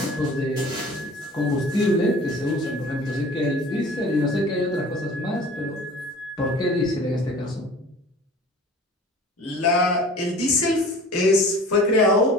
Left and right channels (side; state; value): both; normal; correlation 0.43